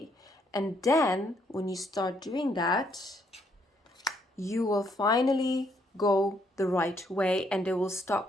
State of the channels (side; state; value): both; normal; correlation 0.71